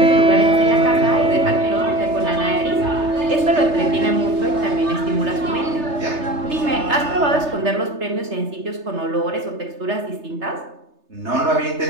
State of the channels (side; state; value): left; late; 3.3 ms